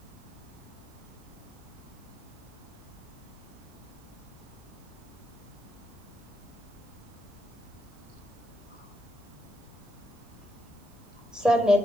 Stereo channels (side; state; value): right; noise; hiss, 26 dB below the sound